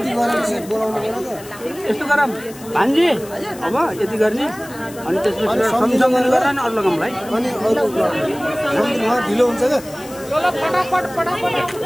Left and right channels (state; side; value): noise; left; hiss, 18 dB below the sound